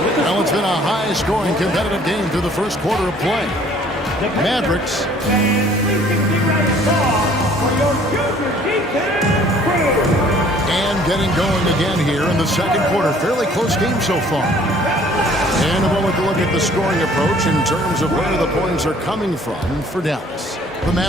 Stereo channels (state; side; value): normal; both; correlation 0.56